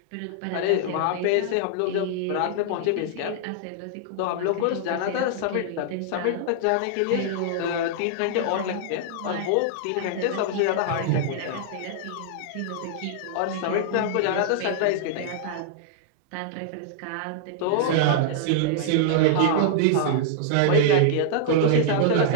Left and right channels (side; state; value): both; different; correlation -0.01